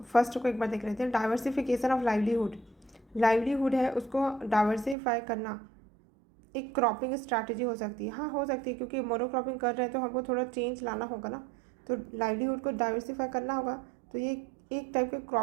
फर्स्ट को एक बार देख लेते हैं। डाइवर्सिफिकेशन ऑफ लाइवलीहुड है, उसको डाइवर्सिफाई करना एक क्रॉपिंग स्ट्रैटेजी हो सकती है। हाँ, हो सकती है, क्योंकि मोनोक्रॉपिंग कर रहे हैं तो हमको थोड़ा चेंज लाना होगा ना, तो लाइवलीहुड को डाइवर्सिफाई करना होगा, तो ये एक टाइप के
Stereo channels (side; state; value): left; drops out; at 5.0 s